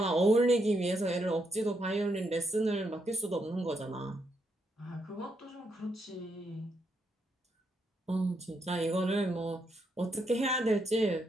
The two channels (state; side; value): normal; both; correlation 0.78